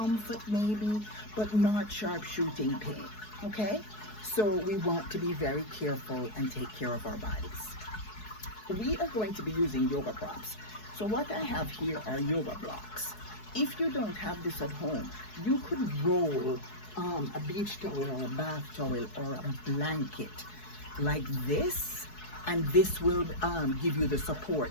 maybe, but not sharp shooting pain, okay? So we want to be very careful and take care of our bodies. We are going to be using yoga props. So what I have here are yoga blocks. If you don't have this at home, you could roll a beach towel or a bath towel or a blanket like this, and this will give you the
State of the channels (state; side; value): late; right; 4.7 ms